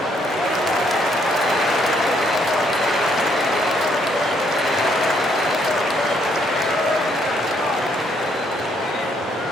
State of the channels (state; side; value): normal; both; correlation 0.70